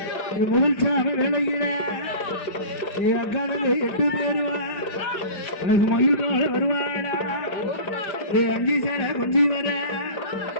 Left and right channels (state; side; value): late; right; 5.0 ms